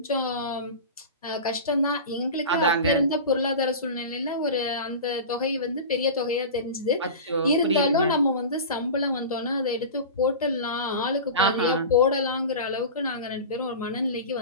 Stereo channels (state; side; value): inverted; both; correlation -0.30